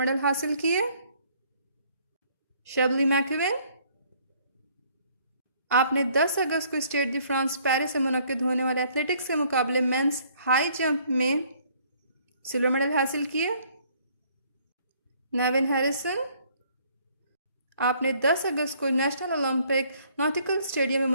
हासिल किए। शबली मैकविन, आपने 10 अगस्त को स्टेड दी फ्रांस पेरिस से मुनक्किद होने वाले एथलेटिक्स के मुकाबले मेंस हाई जंप में सिल्वर मेडल हासिल किए। नेविन हैरिसन, आपने 10 अगस्त को नेशनल ओलंपिक नॉटिकल स्टेडियम में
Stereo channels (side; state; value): both; inverted; correlation -0.62